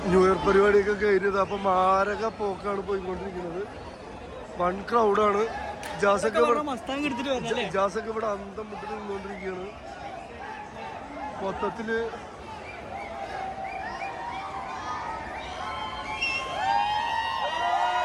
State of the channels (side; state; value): both; identical; correlation 1.00